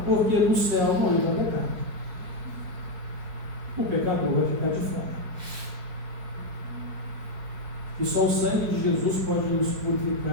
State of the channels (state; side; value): late; left; 5.5 ms